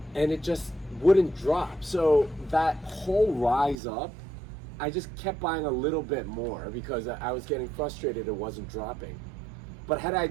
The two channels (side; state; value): left; drops out; at 3.8 s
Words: and it just wouldn't drop. So that whole rise up, I just kept buying a little bit more because I was getting frustrated it wasn't dropping. But had I